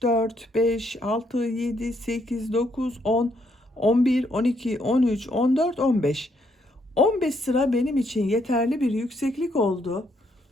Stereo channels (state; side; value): normal; both; correlation 0.73